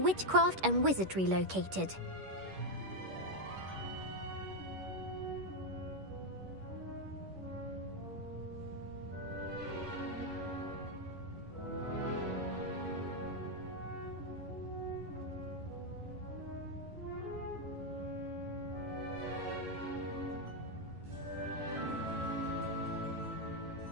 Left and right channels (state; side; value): late; left; 11 ms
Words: and Wizardry located?